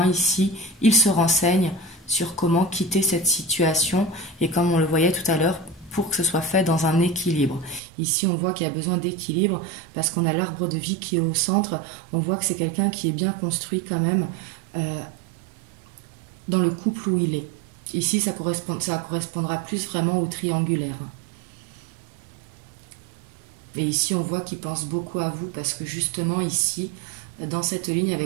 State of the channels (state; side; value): drops out; left; at 7.8 s